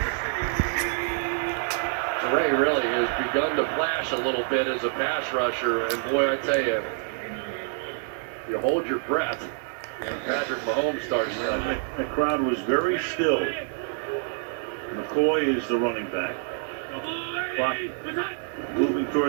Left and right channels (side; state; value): left; silent; 59 dB below the other